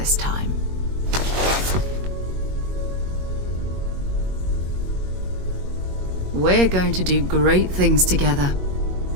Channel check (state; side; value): late; left; 21 ms